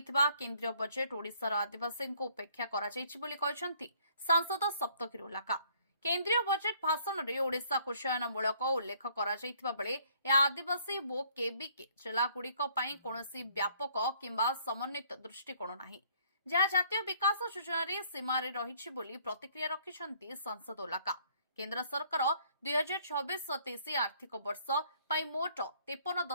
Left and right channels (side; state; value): both; inverted; correlation -0.62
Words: केन्द्रीय बजेट ओडिशार आदिवासी उपेक्षा करा जायछि बोली कहछन्ति सांसद सप्तगिरी उल्लाका। केन्द्रीय बजेट भाषण में ओडिशा कुशयनमूलक उल्लेख करा जायथिबा बेले या आदिवासी वो केबीके जिलागुड़िक पई कोनोसी व्यापक किंबा समन्वित दृष्टिकोण नाही, जहाँ जातीय विकास योजन सीमार रही बोली प्रतिक्रिया रखिछन्ति सांसद उल्लाका। केन्द्र सरकार 2026-27 आर्थिक वर्ष पर मोट